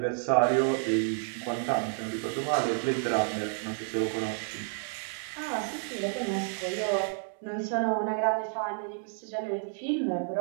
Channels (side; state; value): left; silent; digital silence